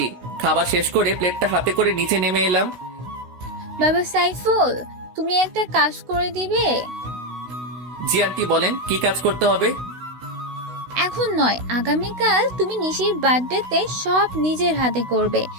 খাবার শেষ করে প্লেটটা হাতে করে নিচে নেমে এলাম। বাবা সাইফুল, তুমি একটা কাজ করে দিবে? জি আন্টি, বলেন কি কাজ করতে হবে? এখন নয়, আগামীকাল তুমি নিশির বার্থডেতে সব নিজের হাতে করবে।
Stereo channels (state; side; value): late; left; 16 ms